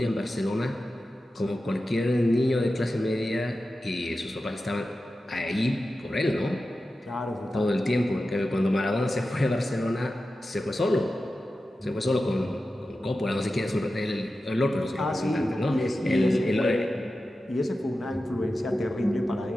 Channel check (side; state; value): both; normal; correlation 0.93